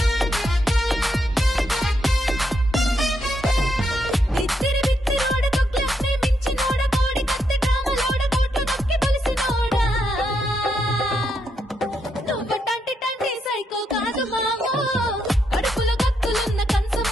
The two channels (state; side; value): normal; both; correlation 0.80